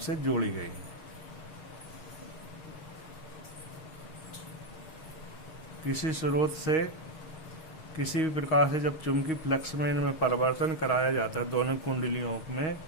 जोड़ी गई है। किसी स्रोत से किसी भी प्रकार से जब चुंबकीय फ्लक्स में इनमें परिवर्तन कराया जाता है दोनों कुंडलियों में,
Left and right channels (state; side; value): late; right; 6.3 ms